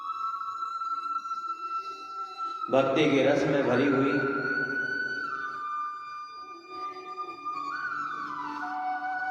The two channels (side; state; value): both; identical; correlation 1.00